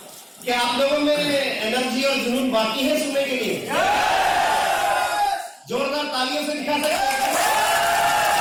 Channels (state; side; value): identical; both; correlation 1.00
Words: क्या आप लोगों में एनर्जी और जुनून बाकी है सुनने के लिए? जोरदार तालियों से दिखा सकते हैं।